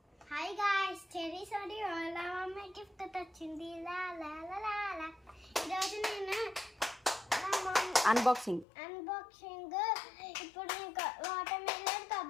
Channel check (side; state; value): right; drops out; at 8.7 s